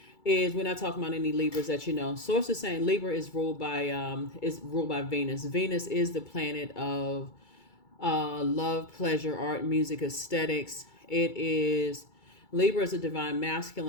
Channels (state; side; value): late; right; 2.3 ms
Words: we're not talking about any Libras that you know. Source is saying Libra is ruled by Venus. Venus is the planet of love, pleasure, art, music, aesthetics. Libra is a divine